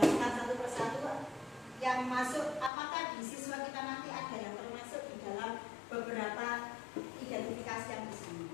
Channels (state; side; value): drops out; right; at 2.7 s